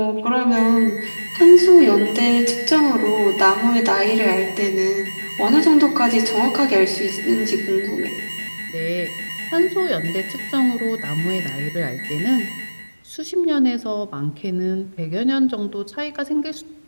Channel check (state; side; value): inverted; both; correlation -1.00